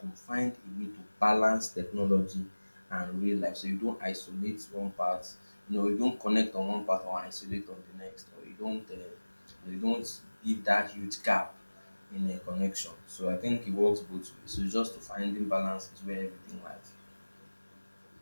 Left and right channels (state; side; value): inverted; both; correlation -1.00